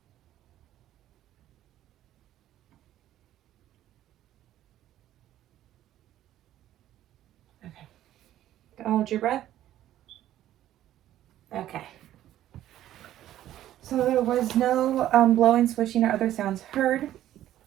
Okay. Go hold your breath. Okay. So there was no blowing, swishing, or other sounds heard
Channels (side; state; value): left; quieter; 12.8 dB